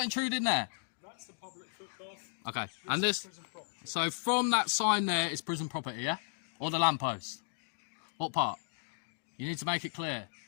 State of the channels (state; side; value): silent; right; digital silence